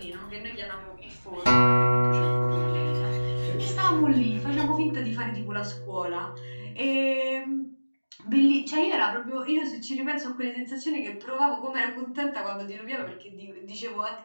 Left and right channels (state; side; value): inverted; both; correlation -1.00